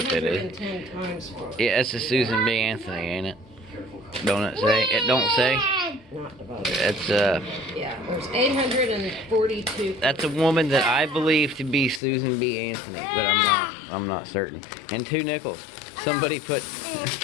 that is. 210 times 4. Yeah, it's a Susan B. Anthony, ain't it? Don't it say? It don't say? Not divided. That's Yeah, there's 842. that's a woman that I believe to be Susan B. Anthony, but I'm not certain. And 2 nickels. Somebody put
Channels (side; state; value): right; drops out; at 12.0 s